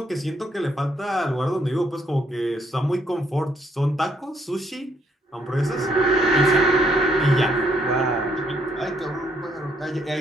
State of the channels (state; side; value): normal; both; correlation 0.70